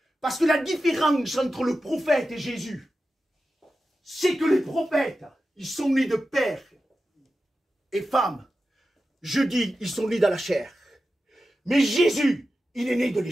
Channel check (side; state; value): both; normal; correlation 0.92